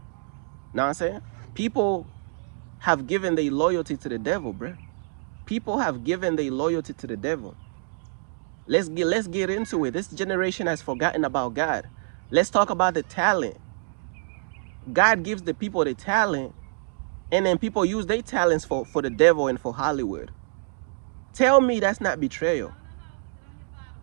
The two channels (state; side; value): silent; left; digital silence